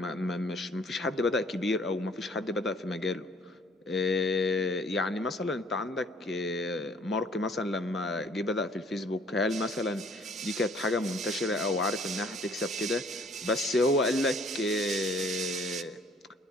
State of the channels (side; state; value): both; normal; correlation 0.58